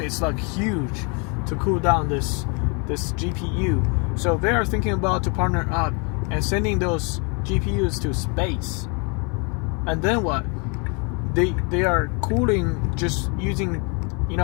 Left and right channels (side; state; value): right; quieter; 34.1 dB